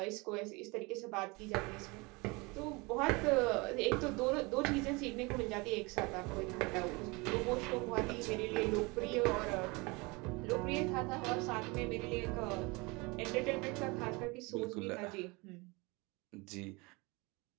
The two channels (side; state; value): left; quieter; 26.2 dB